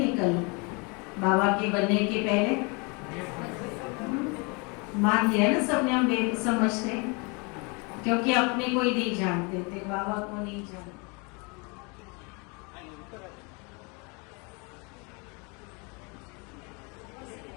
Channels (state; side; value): quieter; right; 31.0 dB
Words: बाबा के बनने के पहले मान लिया ना सबने हम बेसमझते, क्योंकि अपने को ही नहीं जानते थे, बाबा को नहीं जानते।